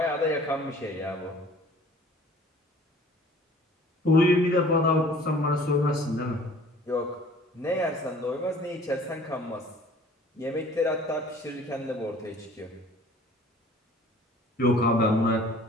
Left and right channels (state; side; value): normal; both; correlation 0.50